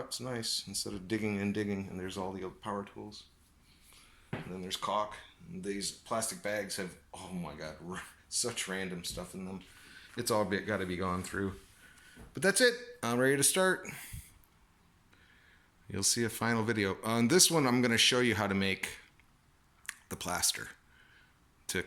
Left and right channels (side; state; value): both; identical; correlation 1.00